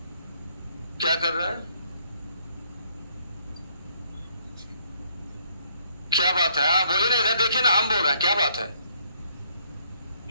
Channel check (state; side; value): inverted; both; correlation -0.67